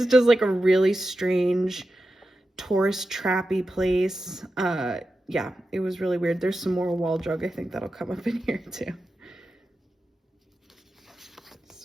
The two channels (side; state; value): both; normal; correlation 0.91